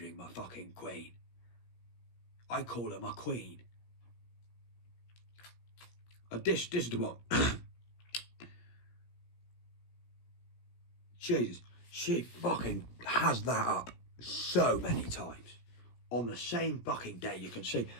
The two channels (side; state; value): right; late; 17 ms